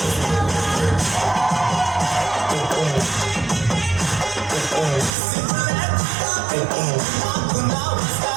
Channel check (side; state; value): left; drops out; at 5.2 s